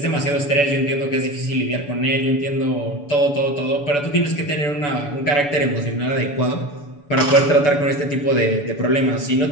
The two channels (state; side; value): late; right; 6.9 ms